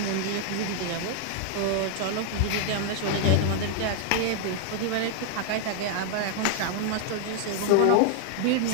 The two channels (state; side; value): different; both; correlation 0.00